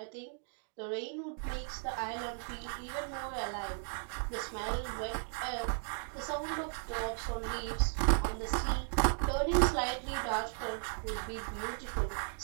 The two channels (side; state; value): left; silent; 54 dB below the other